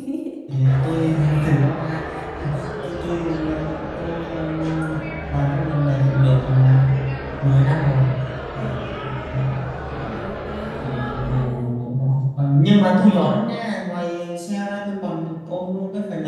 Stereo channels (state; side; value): identical; both; correlation 1.00